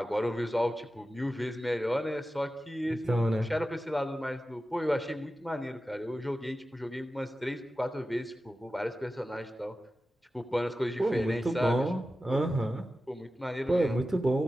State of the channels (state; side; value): normal; both; correlation 0.94